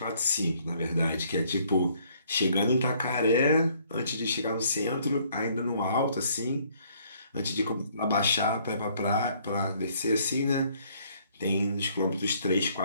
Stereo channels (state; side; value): inverted; both; correlation -0.63